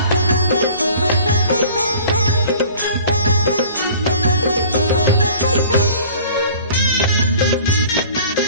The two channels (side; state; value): both; inverted; correlation -0.48